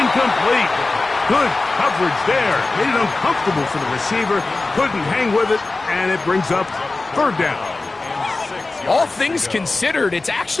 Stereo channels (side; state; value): right; quieter; 3.4 dB